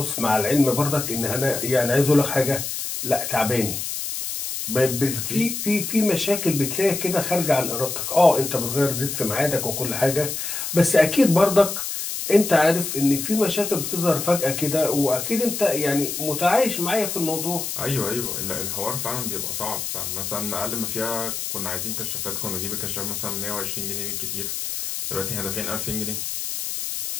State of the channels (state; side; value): noise; left; hiss, 4 dB below the sound